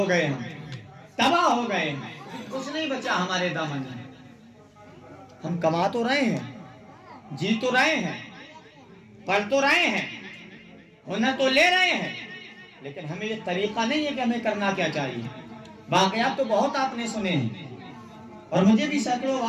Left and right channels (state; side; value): identical; both; correlation 1.00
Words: گئے ہم، تباہ ہو گئے ہیں، کچھ نہیں بچا ہمارے دامن میں۔ ہم کما تو رہے ہیں، جی تو رہے ہیں، پڑھ تو رہے ہیں، ہنر تو لے رہے ہیں، لیکن ہمیں یہ طریقہ نہیں ہے کہ ہمیں کرنا کیا چاہیے۔ واقعات تو بہت آپ نے سنے ہیں، اور مجھے بھی سینکڑوں